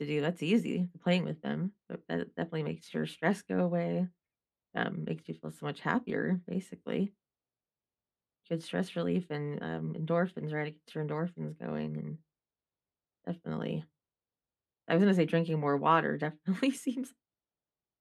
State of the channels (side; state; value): both; identical; correlation 1.00